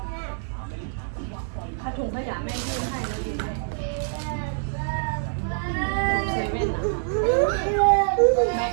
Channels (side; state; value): left; silent; digital silence